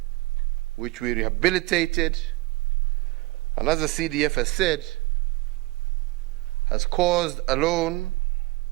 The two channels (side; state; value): left; quieter; 21.9 dB